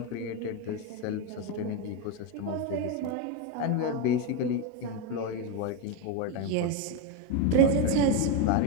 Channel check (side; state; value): both; different; correlation 0.03